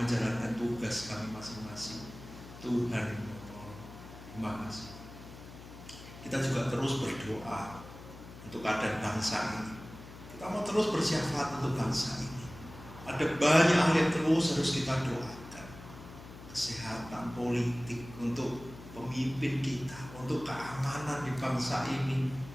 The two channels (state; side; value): noise; left; hum, 15 dB below the sound